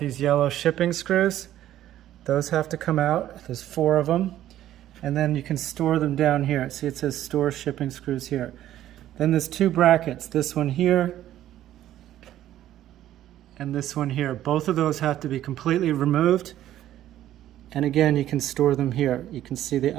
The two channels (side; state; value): left; quieter; 12.7 dB